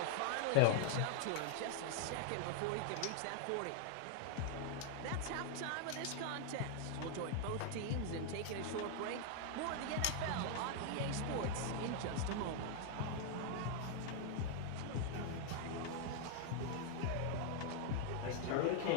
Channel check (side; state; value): both; different; correlation 0.00